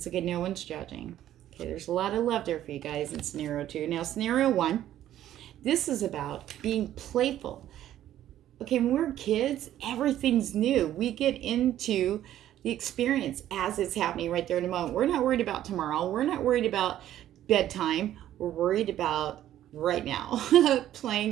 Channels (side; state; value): left; quieter; 12.3 dB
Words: okay. No one's judging. Okay. There's a lot of love there for you guys in scenario 2. Now, scenario 1. This is about being playful. Okay, when we're kids, everything's new. We get into the experience as it's happening right there in the moment. We're not worried about tomorrow. We're not worried about bedtime. We're worried about right now.